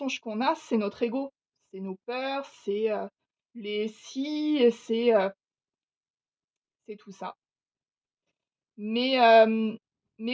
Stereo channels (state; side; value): identical; both; correlation 1.00